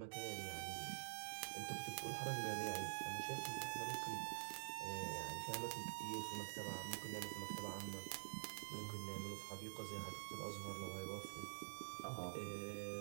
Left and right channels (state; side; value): silent; left; digital silence